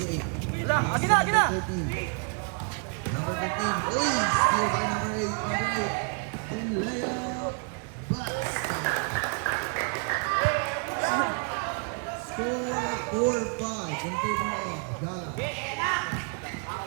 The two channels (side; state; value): left; quieter; 38.7 dB